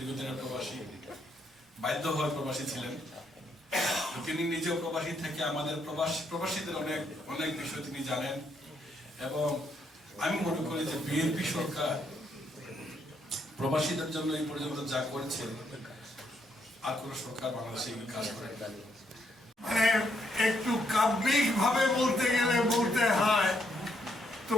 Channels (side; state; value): both; normal; correlation 0.74